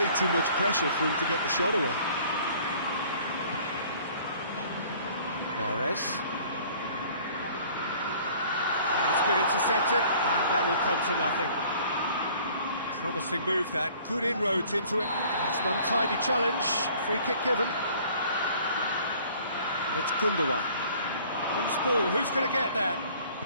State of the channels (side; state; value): both; inverted; correlation -0.53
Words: too much pressure for him to get the shot away. Mahrez. It's been intercepted, and that will come to nothing. Promising move that, good inroads into it. It's an untidy challenge, free kick given. It's Gundogan. Loose ball, who's going to get that?